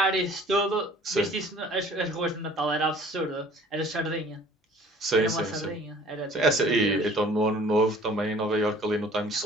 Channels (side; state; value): both; normal; correlation 0.51